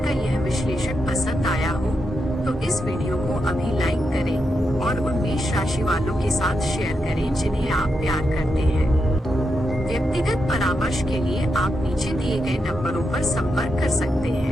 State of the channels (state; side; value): normal; both; correlation 0.85